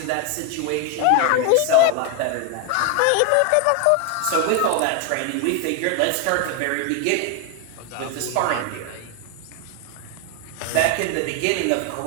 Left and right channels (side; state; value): both; different; correlation 0.01